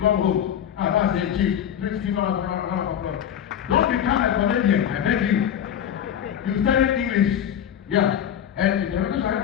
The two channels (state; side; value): quieter; right; 9.5 dB